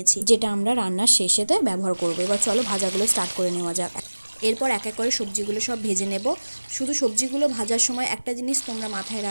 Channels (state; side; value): inverted; both; correlation -1.00